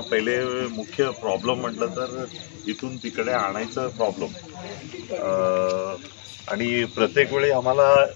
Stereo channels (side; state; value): right; silent; digital silence